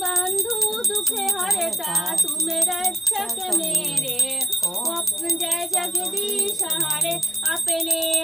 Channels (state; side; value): normal; both; correlation 0.90